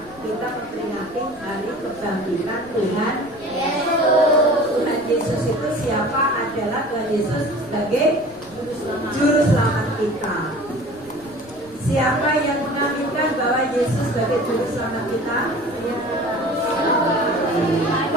kita memperingati hari kebangkitan Tuhan Yesus. Tuhan Yesus itu siapa? Adalah Tuhan Yesus sebagai Juru Selamat kita. Siapa yang mengaminkan bahwa Yesus sebagai Juru Selamat kita?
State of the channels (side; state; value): left; noise; rumble, 25 dB below the sound